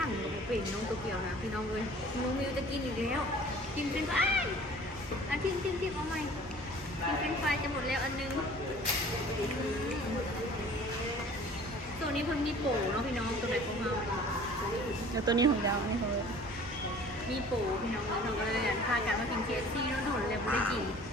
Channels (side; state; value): both; normal; correlation 0.48